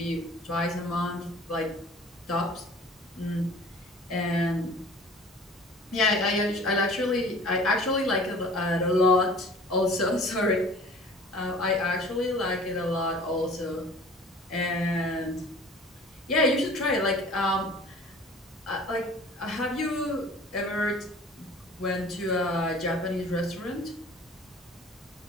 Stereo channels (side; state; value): both; normal; correlation 0.46